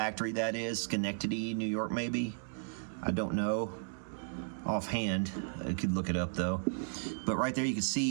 that is. Schenectady, New York, maybe. I don't know offhand. I could look it up though. But right there you can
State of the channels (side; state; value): left; silent; digital silence